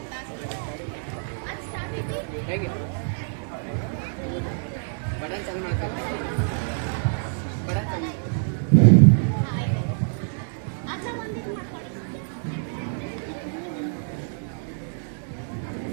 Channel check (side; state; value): left; silent; digital silence